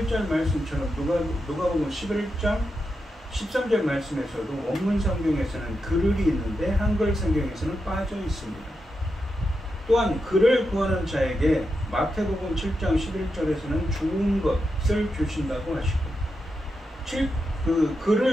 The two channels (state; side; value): normal; both; correlation 0.87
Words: 말씀처럼 누가복음 11장 13절 말씀에서도 원문 성경에서는 그를이 있는데 한글 성경에서는 빠져 있습니다. 또한 그를 구하는 자에게 마태복음 7장 11절에서는 좋은 것을 주신다고 하시고 그